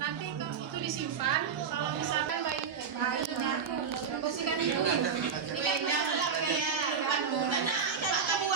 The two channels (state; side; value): quieter; left; 6.5 dB